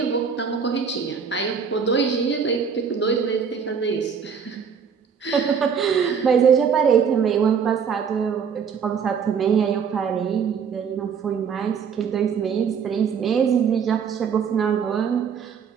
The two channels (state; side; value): quieter; left; 6.7 dB